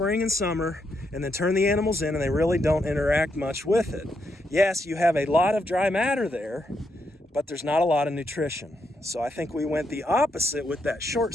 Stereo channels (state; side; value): normal; both; correlation 0.80